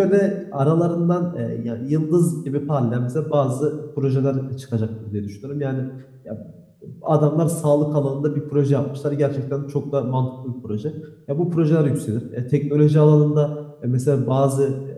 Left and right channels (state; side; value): identical; both; correlation 1.00